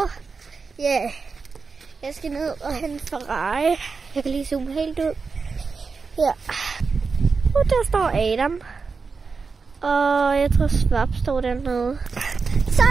ja, jeg skal ned og hente Ferrari. Jeg kan lige zoome helt ud. Ja, og der står Adam, og jeg tror Svap står dernede. Så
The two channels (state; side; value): quieter; left; 4.8 dB